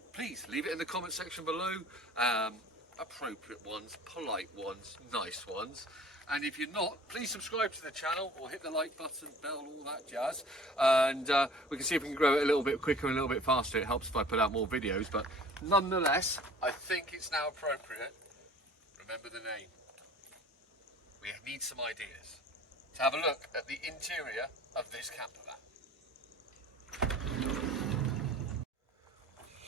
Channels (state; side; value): normal; both; correlation 0.47